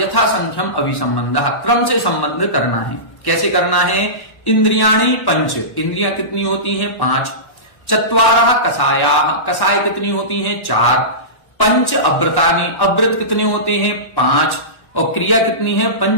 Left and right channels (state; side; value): late; right; 1.1 ms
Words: संख्यम अभिसंबंध, क्रम से संबंध करना है। कैसे करना है? इंद्रियाणि पंच, इंद्रियां कितनी होती हैं? 5। चत्वारः कषायाः, कषाय कितनी होती हैं? 4। पंच अव्रतानि, अव्रत कितने होते हैं? 5। और क्रिया कितनी है?